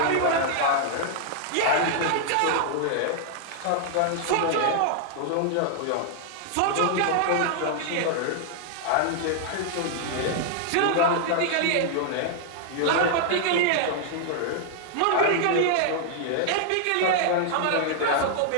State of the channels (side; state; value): both; different; correlation -0.01